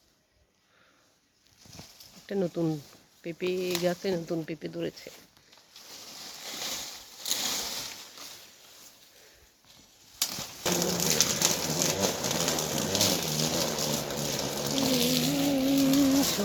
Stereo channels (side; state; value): both; identical; correlation 1.00